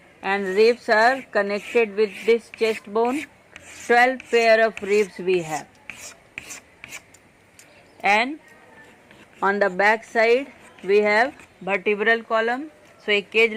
and ribs are connected with this chest bone. 12 pair of ribs we have. And on the back side we have vertebral column. So a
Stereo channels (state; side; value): identical; both; correlation 1.00